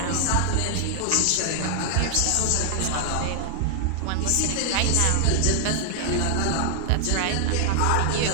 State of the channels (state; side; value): different; both; correlation 0.00